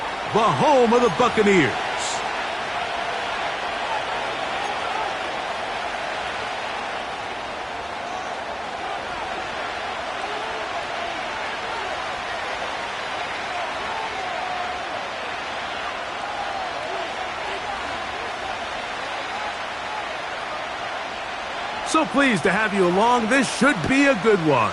the home of the Buccaneers. So pleased to have you along. This should be a good one.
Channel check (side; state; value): both; identical; correlation 1.00